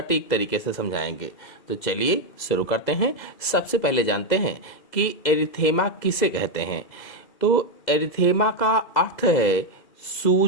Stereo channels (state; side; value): late; right; 2.0 ms